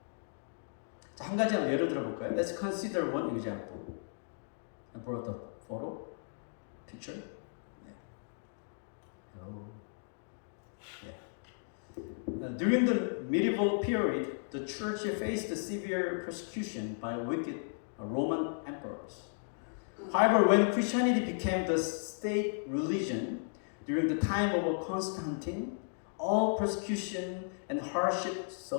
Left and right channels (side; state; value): right; silent; digital silence